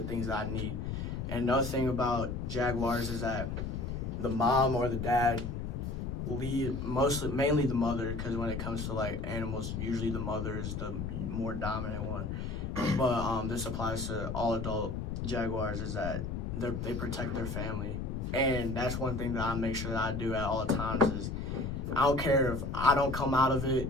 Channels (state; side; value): noise; left; rumble, 4 dB below the sound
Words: things that I need. And another thing about jaguars is that the mom or the dad lead mainly the mother, because when it comes to like animals, usually the mother is the more dominant one. But this applies to all adult jaguars, is that they protect their family. And that's one thing that I make sure that I do at all times is I don't care if I don't come out of